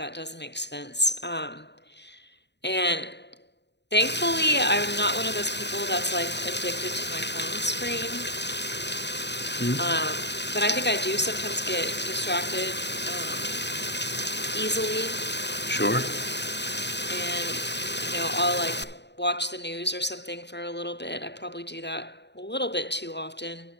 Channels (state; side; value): late; right; 0.50 ms